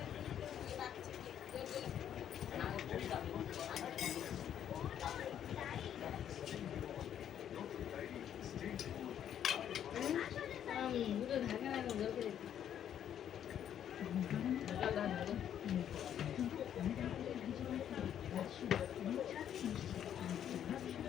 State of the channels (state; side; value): quieter; right; 9.8 dB